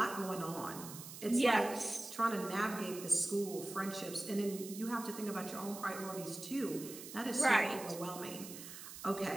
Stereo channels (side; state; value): right; noise; hiss, 12 dB below the sound